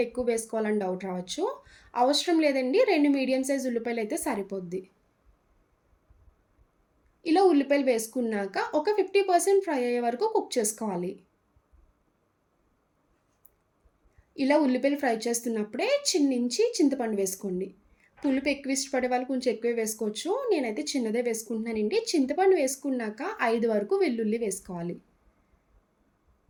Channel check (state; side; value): identical; both; correlation 1.00